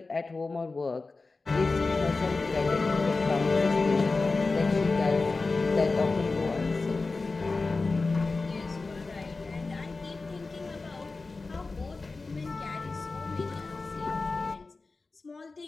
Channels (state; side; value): quieter; right; 3.8 dB